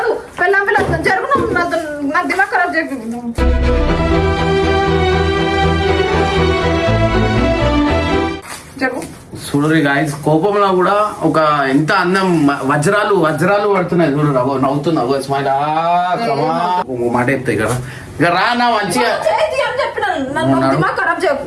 పిల్లం పిల్లలు జరుగును నా దిమాగ్ ఖరాబ్ చేయ. చూడరు గాయస్ కోపంలో కూడా ఒక ఎంత అందం వజ్రాలు వజ్రాలు పడుతున్నాయి చూడరు. నవ్వుతున్నావు స్మైల్ మాట చెప్తాయి కదా. ఇక రా నా మంచిగా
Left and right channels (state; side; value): identical; both; correlation 1.00